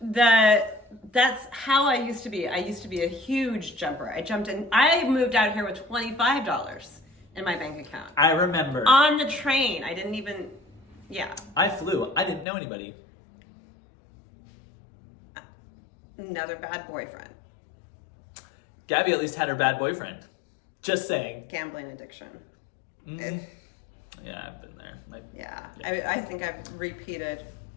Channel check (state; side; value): drops out; right; at 12.5 s